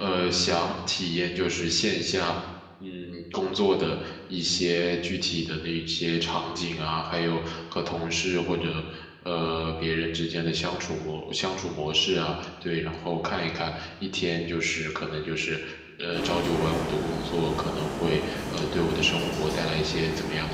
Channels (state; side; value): identical; both; correlation 1.00